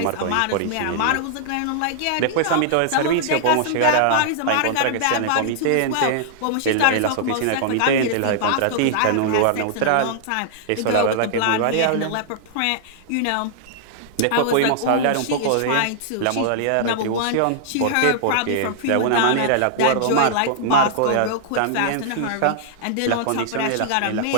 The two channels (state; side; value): different; both; correlation -0.01